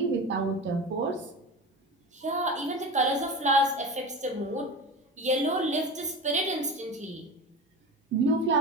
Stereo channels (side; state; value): both; normal; correlation 0.29